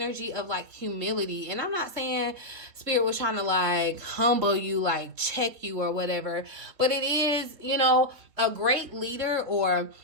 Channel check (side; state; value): left; late; 3.7 ms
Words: of like humility. And I'm not saying Spirit was trying to like humble you, like check you or whatever, but it is, you know, a great leader or